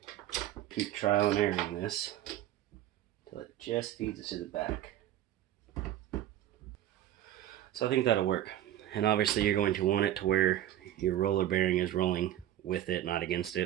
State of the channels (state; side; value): quieter; left; 12.4 dB